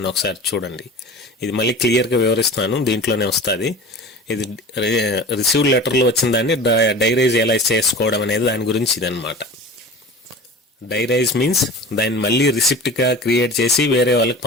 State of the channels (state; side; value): normal; both; correlation 0.37